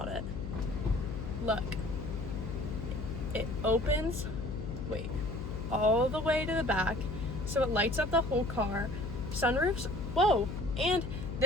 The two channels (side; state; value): left; noise; hum, 6 dB below the sound